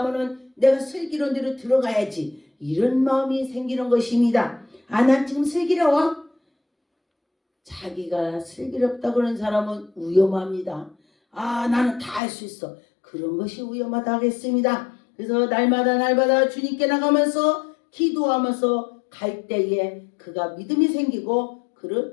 내가 슬기로운 데로 들어가야지. 이런 마음이 생기는 것입니다. 난 지금 슬기로워? 자기가 슬기롭다고 하는 사람은 위험합니다. 나는 다 할 수 있어. 그런 것이 위험하다 하겠습니다. 그래서 날마다 주님께 나가면서 기도하면서 갈 때에 그가 믿음이 생기고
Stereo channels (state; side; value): drops out; right; at 12.2 s